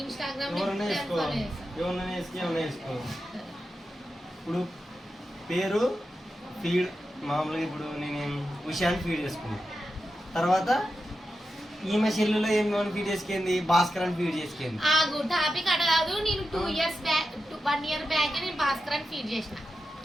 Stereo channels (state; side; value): normal; both; correlation 0.90